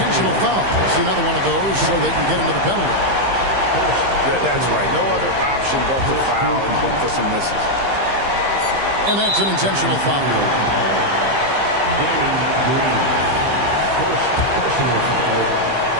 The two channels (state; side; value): late; left; 15 ms